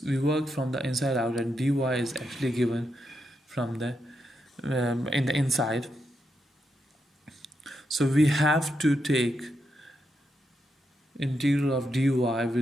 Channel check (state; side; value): normal; both; correlation 0.83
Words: work from the inside out and dy is actually given from the in the inside. So we have to take integral of dy